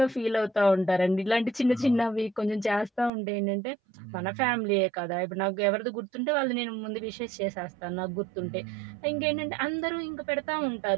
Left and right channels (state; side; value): drops out; left; at 3.1 s